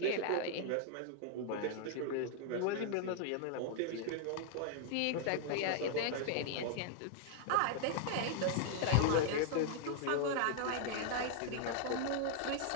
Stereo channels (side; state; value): both; different; correlation 0.00